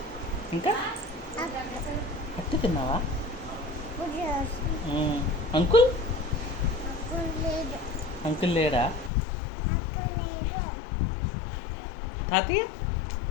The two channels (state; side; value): drops out; right; at 9.1 s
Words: ఇంకా అట్టు తిన్నావా? అంకుల్ అంకుల్ లేడా? తాతయ్య